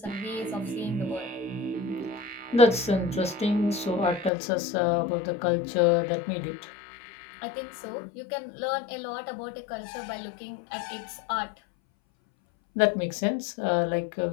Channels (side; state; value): right; drops out; at 4.3 s